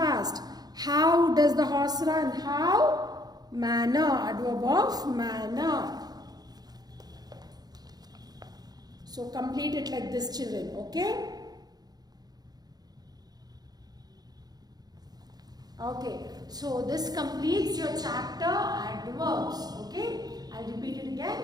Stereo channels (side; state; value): left; late; 0.19 ms